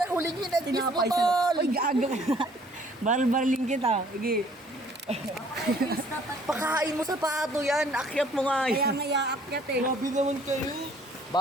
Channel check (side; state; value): both; normal; correlation 0.58